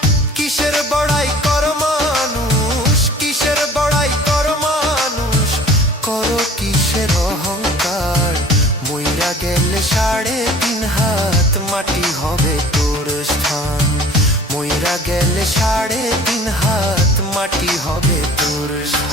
কিসের বড়াই কর মানুষ, কিসের বড়াই কর মানুষ, করো কিসের অহংকার। মইরা গেলে 3.5 হাত মাটি হবে তোর স্থান, মইরা গেলে 3.5 হাত মাটি হবে তোর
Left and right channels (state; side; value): normal; both; correlation 0.47